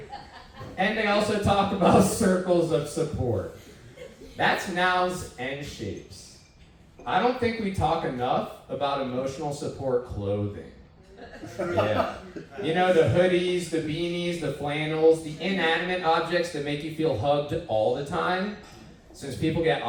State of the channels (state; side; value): identical; both; correlation 1.00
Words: And they also talk about circles of support. That's nouns and shapes. I don't think we talk enough about emotional support clothing. Yeah. You know, the hoodies, the beanies, the flannels, the inanimate objects that make you feel hugged all the time. Since people get